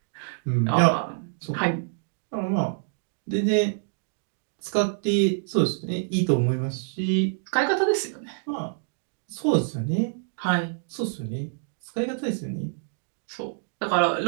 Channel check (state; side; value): silent; left; digital silence